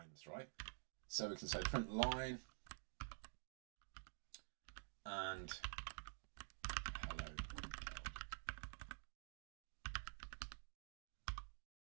right? So we can say print line and hello.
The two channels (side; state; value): left; silent; digital silence